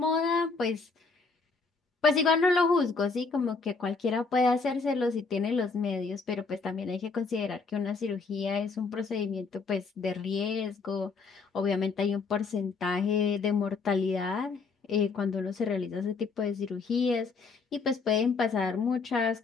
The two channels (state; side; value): quieter; right; 4.5 dB